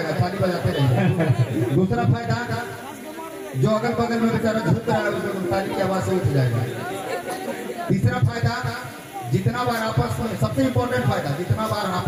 ताली बजाते रहेंगे। दूसरा फायदा, जो अगल बगल में बेचारा झुक रहा है उसको ताली की आवाज से उठ जाएगा। तीसरा फायदा, जितना बार आपस में, सबसे इंपॉर्टेंट फायदा, जितना बार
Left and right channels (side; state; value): both; identical; correlation 1.00